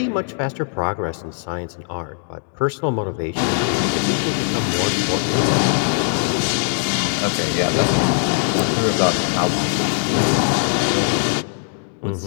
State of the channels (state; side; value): silent; right; 66 dB below the other